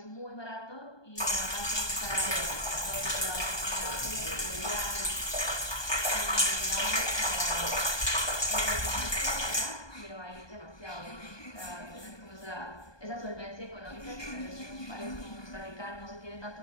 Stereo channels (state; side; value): late; right; 1.2 ms